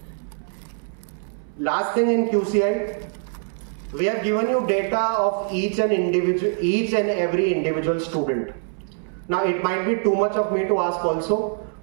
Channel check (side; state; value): left; silent; 63 dB below the other